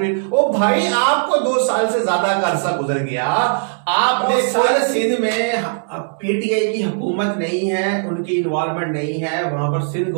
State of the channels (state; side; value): silent; left; 67 dB below the other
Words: ओ भाई आपको 2 साल से ज्यादा का अरसा गुजर गया, आपने सारे सिंध में पीटीआई की हुकूमत नहीं है, उनकी इन्वॉल्वमेंट नहीं है, वहां पर सिंध